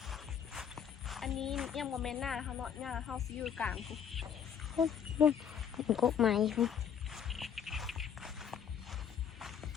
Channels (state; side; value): quieter; right; 8.0 dB